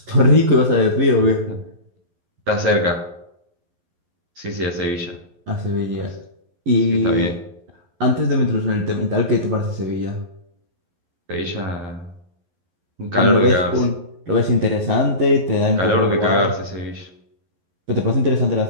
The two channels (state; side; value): late; left; 11 ms